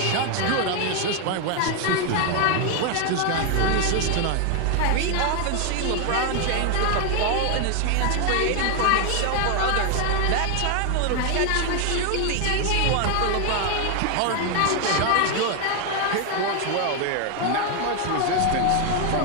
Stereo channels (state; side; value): different; both; correlation 0.01